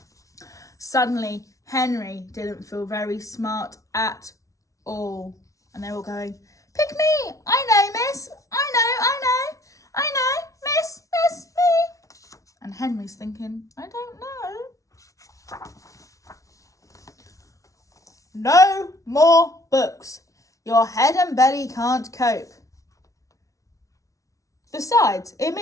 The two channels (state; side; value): late; right; 0.16 ms